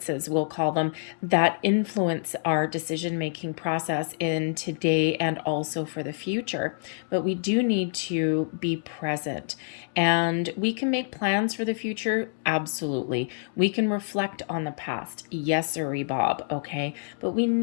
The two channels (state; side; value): silent; right; digital silence